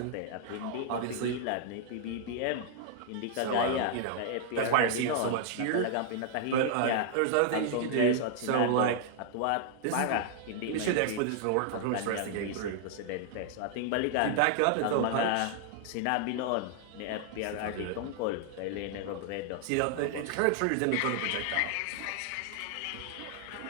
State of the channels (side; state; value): both; different; correlation 0.00